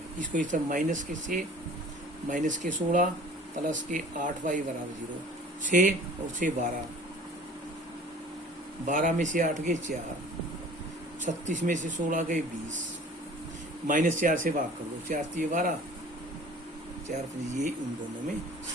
इसको इस तरह माइनस के 16 प्लस के 8y बराबर 0, 6 और 6 12, 12 में से 8 गए 4, 36 में से 16 गए 20, माइनस 4 से भाग कर दो, 4 3 12, 4 ये उन दोनों में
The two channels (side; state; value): both; normal; correlation 0.46